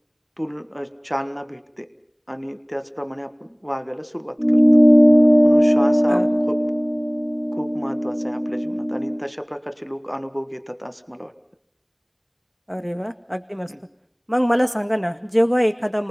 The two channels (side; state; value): both; identical; correlation 1.00